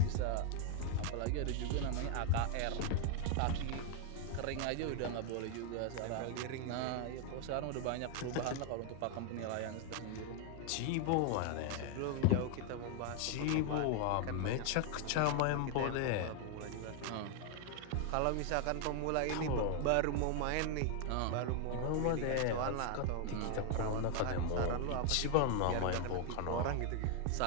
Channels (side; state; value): both; different; correlation 0.00